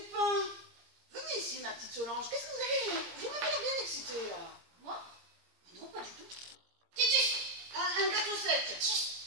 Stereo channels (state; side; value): late; left; 17 ms